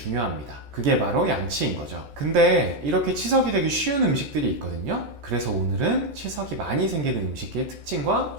그게 바로 양치인 거죠. 근데 이렇게 치석이 되기 쉬운 음식들이 있거든요. 그래서 오늘은 치석이 많이 생기는 음식의 특징과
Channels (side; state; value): left; late; 14 ms